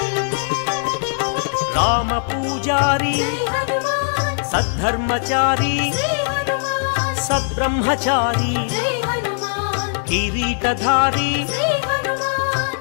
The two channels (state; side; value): silent; right; digital silence